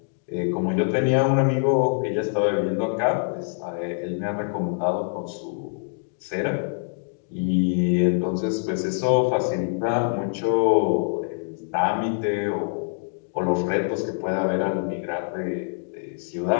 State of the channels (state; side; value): silent; right; digital silence